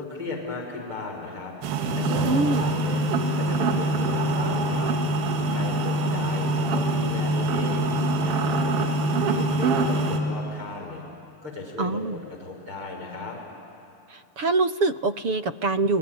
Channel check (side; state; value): left; late; 7.4 ms